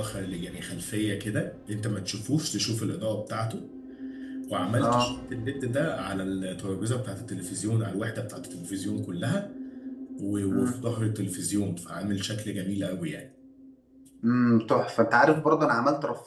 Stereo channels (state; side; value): identical; both; correlation 1.00